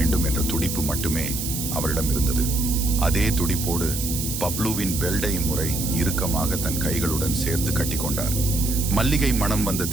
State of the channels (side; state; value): right; noise; hiss, 4 dB below the sound